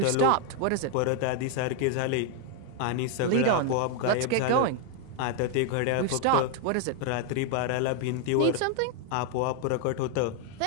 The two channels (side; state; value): both; different; correlation 0.00